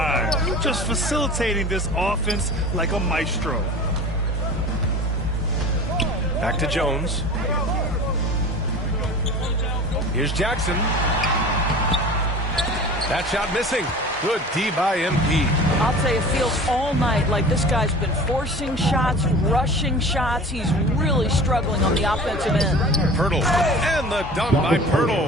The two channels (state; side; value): normal; both; correlation 0.39